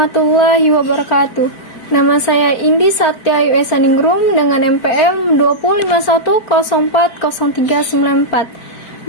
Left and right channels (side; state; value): right; late; 4.4 ms